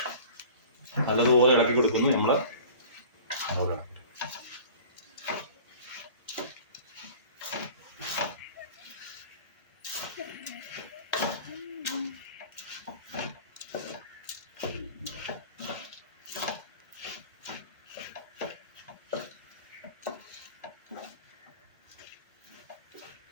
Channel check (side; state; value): both; inverted; correlation -0.42